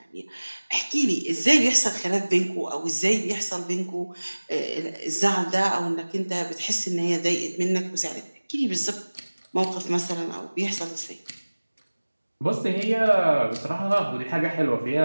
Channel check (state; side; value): inverted; both; correlation -1.00